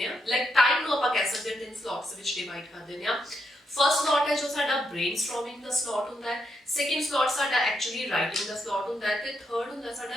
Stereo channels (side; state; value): both; normal; correlation 0.80